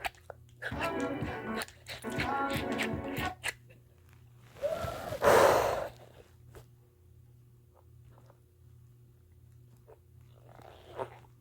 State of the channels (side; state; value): both; identical; correlation 1.00